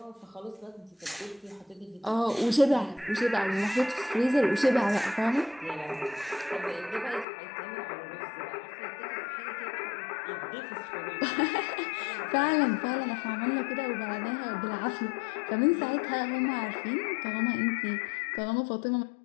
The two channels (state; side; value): drops out; right; at 7.2 s